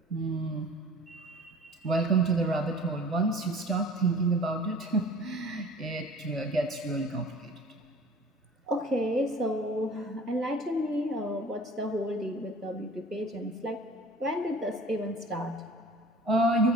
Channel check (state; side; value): normal; both; correlation 0.46